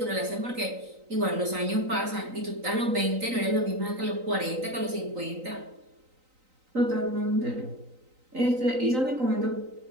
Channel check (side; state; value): left; late; 3.9 ms